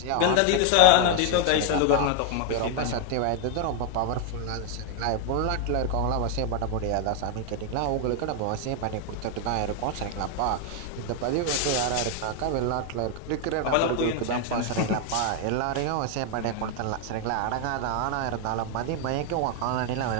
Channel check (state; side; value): different; both; correlation 0.00